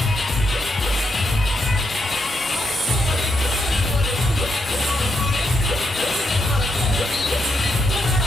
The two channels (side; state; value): both; normal; correlation 0.79